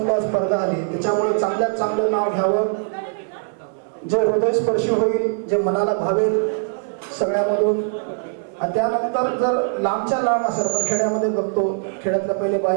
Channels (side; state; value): left; silent; 65 dB below the other